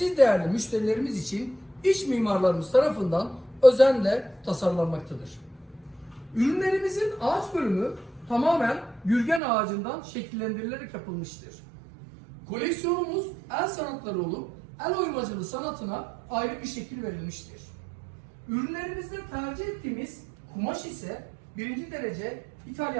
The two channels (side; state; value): left; drops out; at 9.4 s